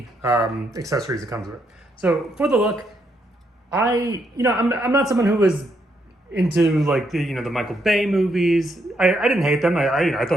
accessories it comes with. So for the look, I'm not someone who was into like the Michael Bay movies. I didn't hate them. I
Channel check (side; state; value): both; normal; correlation 0.77